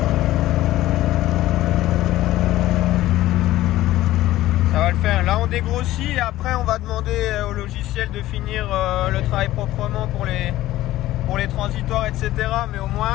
dégrossit et après on va demander au logiciel de finir le travail proprement pour les transitoires, etc. Mais au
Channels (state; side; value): quieter; right; 15.4 dB